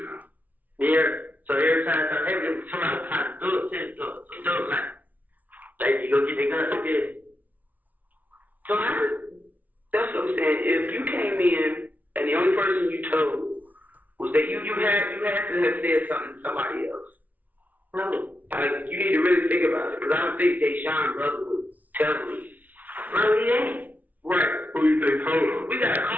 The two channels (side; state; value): left; late; 0.079 ms